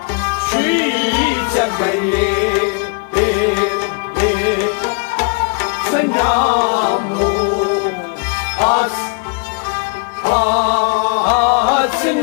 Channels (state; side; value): quieter; right; 36.3 dB